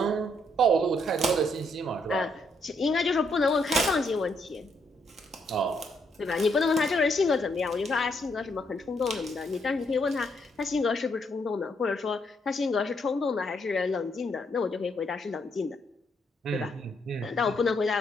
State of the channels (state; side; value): normal; both; correlation 0.74